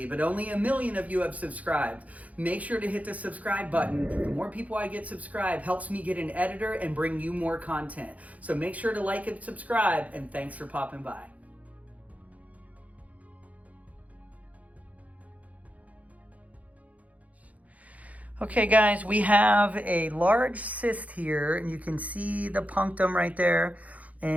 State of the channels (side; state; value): left; late; 0.071 ms